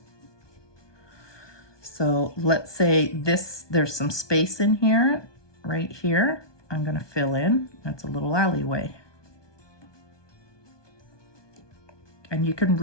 So let's say there's some space in here, right here. I'm going to fill in. That's a little alleyway. And you can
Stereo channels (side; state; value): right; late; 1.2 ms